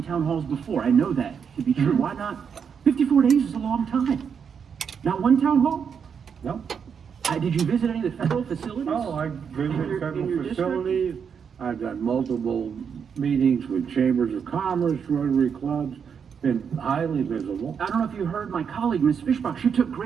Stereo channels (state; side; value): quieter; left; 6.9 dB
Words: town halls before. I know that to be true. Why not? 54 days is a long time. Not one town hall? No. Did you visit any of the federal facilities? Oh, I visited in your federal district? facilities. I've done multiple meetings with chambers of commerce, Rotary clubs, been highly visible. I don't know if you heard my colleague, Ms. Fishbach. She took